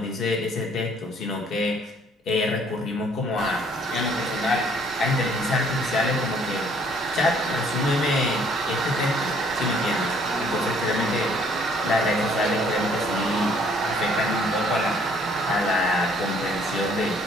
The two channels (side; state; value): both; normal; correlation 0.61